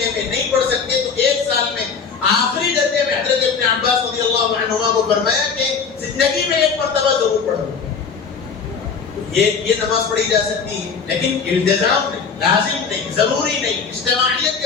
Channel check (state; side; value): quieter; right; 5.7 dB